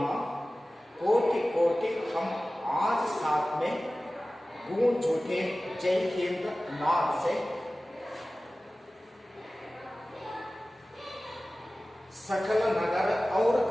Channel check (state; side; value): normal; both; correlation 0.97